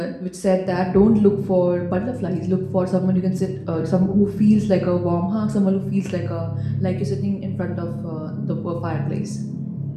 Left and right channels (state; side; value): identical; both; correlation 1.00